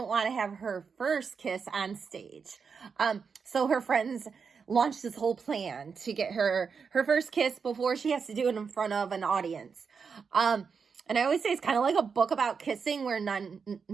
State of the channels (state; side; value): quieter; left; 5.8 dB